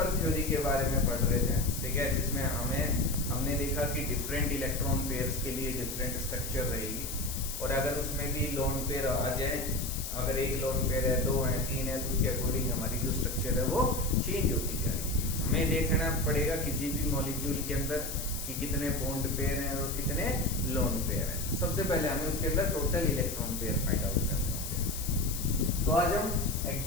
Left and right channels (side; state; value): left; noise; hiss, 7 dB below the sound